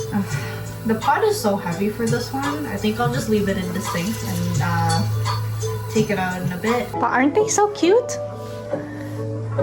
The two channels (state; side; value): identical; both; correlation 1.00